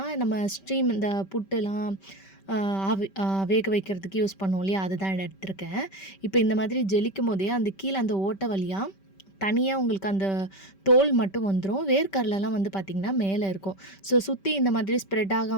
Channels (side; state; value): right; late; 5.2 ms